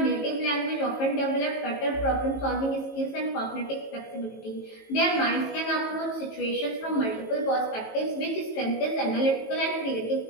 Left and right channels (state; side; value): late; right; 18 ms